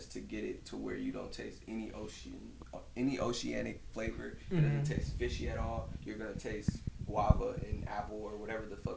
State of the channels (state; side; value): identical; both; correlation 1.00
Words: to get it to where you don't taste any oceanic flavor. It doesn't taste fishy at all. You're gonna taste guava and apple or whatever the